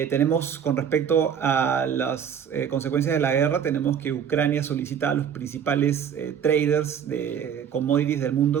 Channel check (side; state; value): left; quieter; 8.1 dB